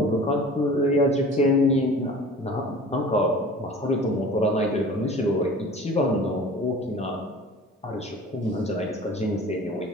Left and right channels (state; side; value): normal; both; correlation 0.42